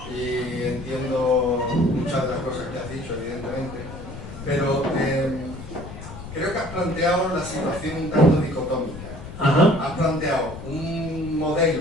y entiendo muchas de las cosas que has dicho, evidentemente, pero creo que has planteado la situación un tanto dicotómica. Ajá. Has planteado un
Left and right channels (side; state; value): left; noise; rumble, 12 dB below the sound